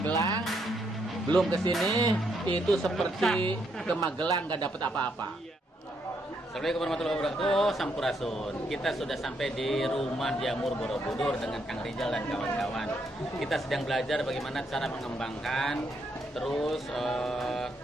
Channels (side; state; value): both; normal; correlation 0.76